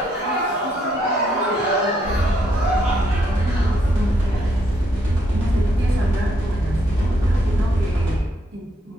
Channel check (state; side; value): normal; both; correlation 0.74